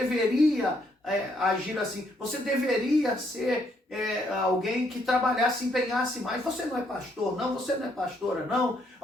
agir assim, você deveria ser alguém que trabalhasse, empenhasse mais, você não é pastor não, você não é pastora não,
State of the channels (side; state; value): both; normal; correlation 0.71